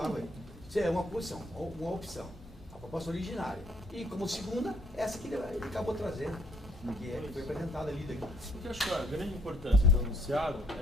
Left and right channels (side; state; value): both; normal; correlation 0.66